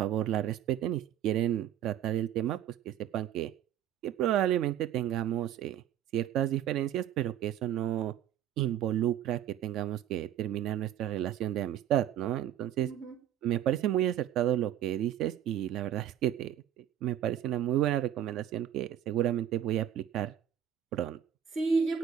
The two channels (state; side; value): quieter; left; 10.6 dB